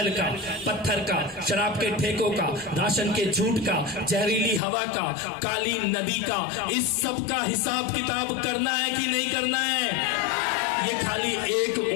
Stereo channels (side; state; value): right; drops out; at 4.6 s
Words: का, पत्थर का, शराब के ठेकों का, राशन के झूठ का, जहरीली हवा का, काली नदी का, इस सब का हिसाब किताब करना है कि नहीं करना है? ये खाली एक